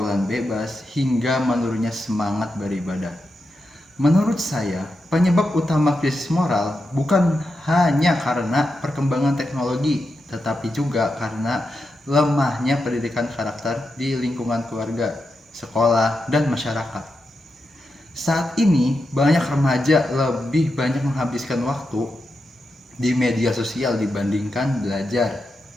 bebas, hingga menurunnya semangat beribadah. Menurut saya, penyebab utama krisis moral bukan hanya karena perkembangan teknologi, tetapi juga karena lemahnya pendidikan karakter di lingkungan keluarga, sekolah, dan masyarakat. Saat ini, banyak remaja lebih banyak menghabiskan waktu di media sosial dibandingkan belajar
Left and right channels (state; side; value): normal; both; correlation 0.87